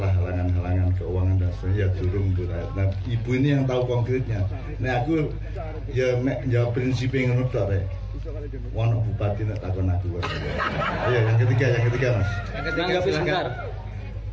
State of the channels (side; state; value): both; identical; correlation 1.00